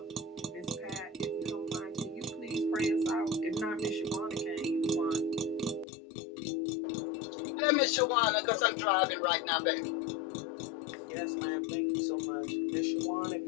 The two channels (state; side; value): drops out; right; at 5.9 s